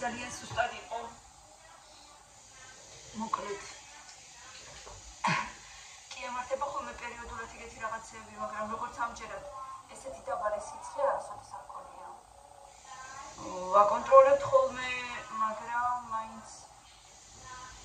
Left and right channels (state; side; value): identical; both; correlation 1.00